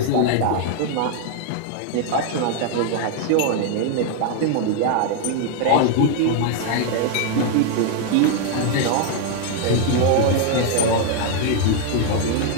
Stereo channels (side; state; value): both; different; correlation 0.00